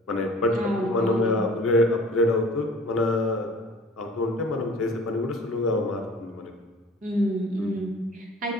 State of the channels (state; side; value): normal; both; correlation 0.47